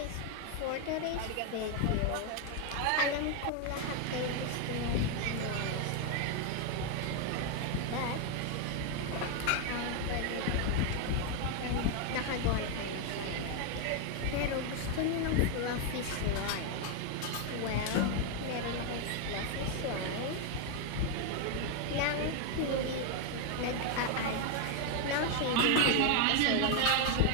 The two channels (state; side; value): different; both; correlation 0.01